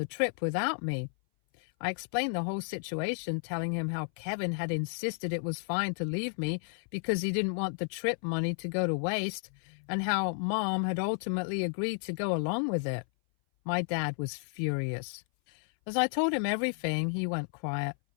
trip without me. I explained the whole situation, telling him how Kevin had insisted it was fine to leave me because he didn't want the trip money to go to waste, and how Mom had ultimately agreed to go along with it. My dad was furious. As I told him everything, he went quiet,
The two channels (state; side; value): silent; right; 56 dB below the other